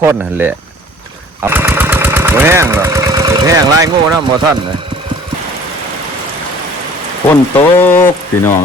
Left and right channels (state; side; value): normal; both; correlation 0.50